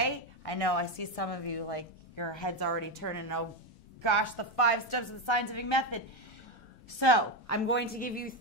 I know I see some of you like your head's already turning. Oh gosh, the 5 steps of the scientific method. So I'm going to give you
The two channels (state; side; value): normal; both; correlation 0.10